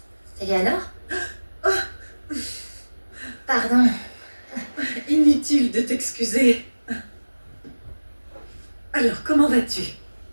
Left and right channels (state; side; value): inverted; both; correlation -1.00